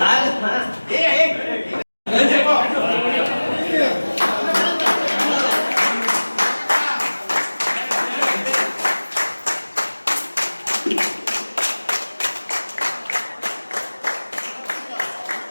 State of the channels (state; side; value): inverted; both; correlation -1.00